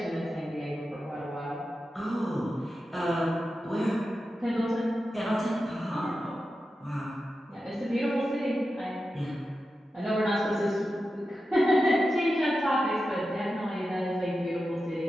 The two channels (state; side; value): normal; both; correlation 0.91